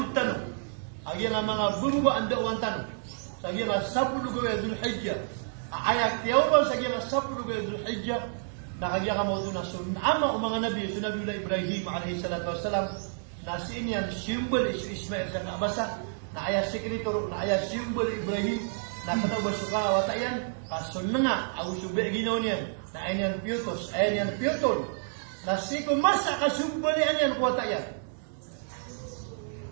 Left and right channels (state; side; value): silent; left; 58 dB below the other